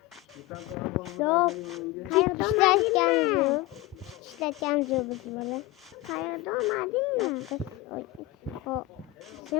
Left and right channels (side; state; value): right; quieter; 18.5 dB